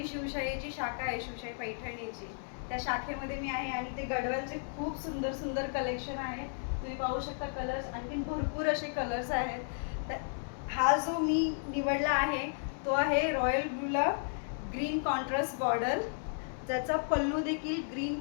शिवशाहीची शाखा आहे, शिवशाही पैठणीची, त्या शाखेमध्ये मी आहे. आणि ते गडवालचे खूप सुंदर सुंदर कलेक्शन आहे. तुम्ही पाहू शकता कलर्स, आणखीन भरपूर असे कलर्स आहेत. तर हा जो मी निवडला आहे तो आहे रॉयल ब्लूला ग्रीन कॉन्ट्रास्ट बॉर्डर, ज्याचा पल्लू देखील ग्रीन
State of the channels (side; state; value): right; silent; digital silence